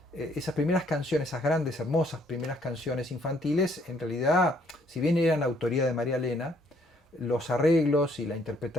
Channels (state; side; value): normal; both; correlation 0.66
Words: esas primeras canciones, esas grandes, hermosas primeras canciones infantiles, en realidad, si bien eran autoría de María Elena, los arreglos y la